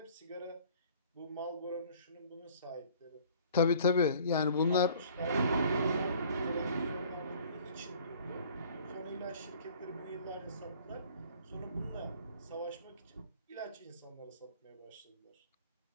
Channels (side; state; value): both; inverted; correlation -0.52